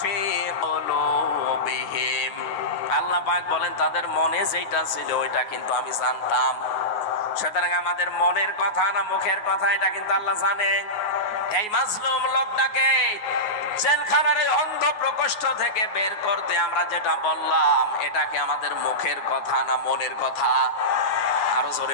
আল্লাহ পাক বলেন তাদের মনে যেটা ছিল ওইটা কিন্তু আমি জানতাম। সুতরাং আমাদের মনের কথা না মুখের কথা, এটা কিন্তু আল্লাহ জানে। এই মাজলুম লোকটাকে জেলখানার এই অন্ধ প্রকোষ্ঠ থেকে বের করতে আমরা যেটা বললাম, এটা কি আমাদের মুখের কথা না মনের কথা? আরো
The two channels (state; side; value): late; right; 9.5 ms